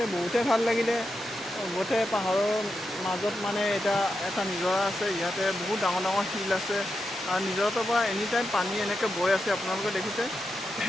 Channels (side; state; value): both; normal; correlation 0.87